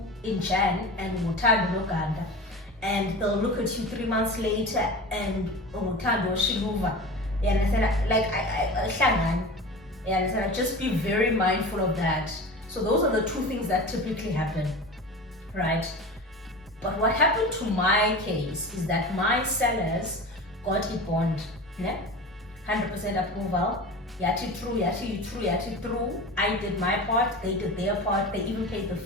in Jan and Thandonoganta, and they'll look at you 3 months later and Thandonoganta. You understand? Like just be very mindful of that. So those are the two things that typically happen, right? But what happened to my case is that my sellers got a bond, 100% approval. Yati true. I did my part, they did their part, they even paid the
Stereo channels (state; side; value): normal; both; correlation 0.33